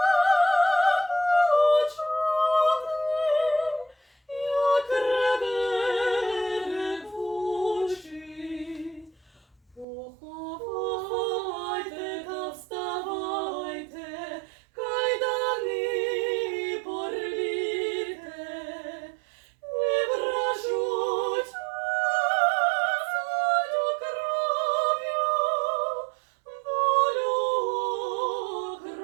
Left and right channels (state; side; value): drops out; left; at 9.9 s